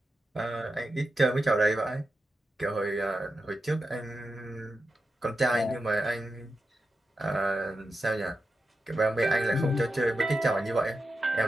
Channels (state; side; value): normal; both; correlation 0.90